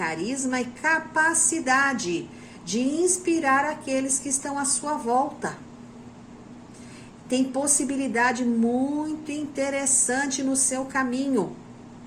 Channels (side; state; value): both; identical; correlation 1.00